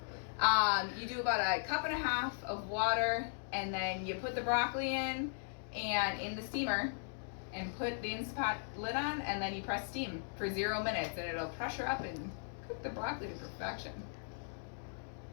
You do about a cup and a half of water, and then you put the broccoli in the steamer and put the Instapot lid on, and then you press steam for 0 minutes, and it'll pressure up and cook the broccoli to perfection.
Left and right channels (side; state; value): right; silent; digital silence